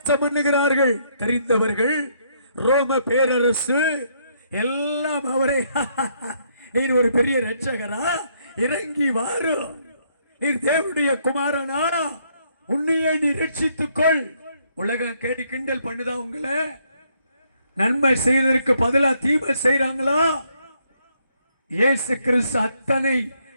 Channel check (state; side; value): inverted; both; correlation -0.71